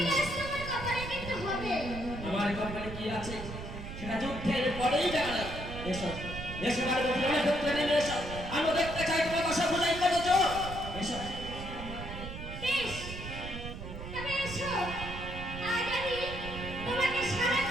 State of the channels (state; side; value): noise; right; rumble, 9 dB below the sound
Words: তোমার কপালে কিন্তু হবে। আমার কপালে কি আছে সেটা যুদ্ধের পরেই জানা যাবে। এসো, এসো পার্বতী, অনেক ক্ষেত্রে নেমে এসো। আমি দেখতে চাই তোমার দশা ভুজাই কত জোর। এসো। বেশ, তবে এসো। আজ আমি তোমাকে সারা